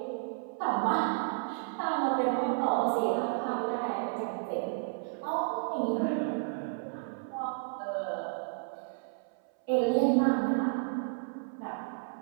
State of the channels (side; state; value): left; silent; 56 dB below the other